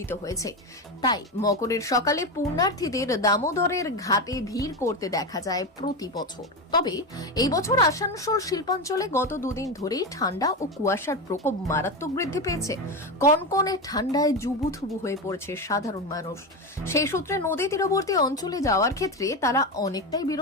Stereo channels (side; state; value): both; normal; correlation 0.16